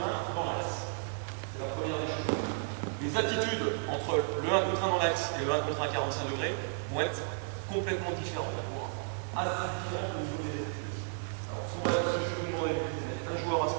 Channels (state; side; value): silent; left; 56 dB below the other